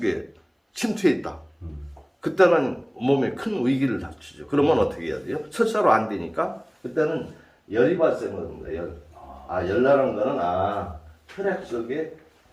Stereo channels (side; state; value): both; identical; correlation 1.00